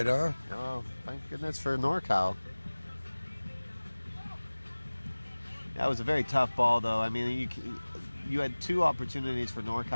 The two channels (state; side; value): inverted; both; correlation -1.00